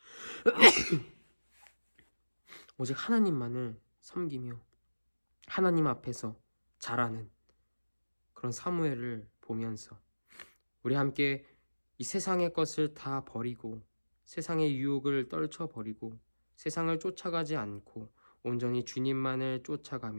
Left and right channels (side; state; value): both; inverted; correlation -1.00